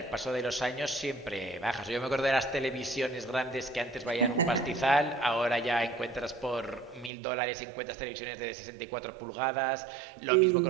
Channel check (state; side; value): drops out; left; at 7.1 s